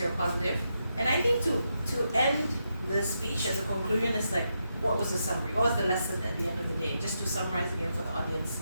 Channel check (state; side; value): inverted; both; correlation -0.84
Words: positive. And I think to end the speech as a conclusion is like, what was the summary? What was the lesson at the end of the day? Just to summarize again for the audience,